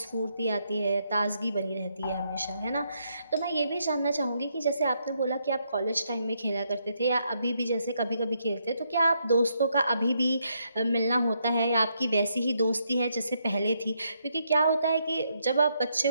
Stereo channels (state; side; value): inverted; both; correlation -0.77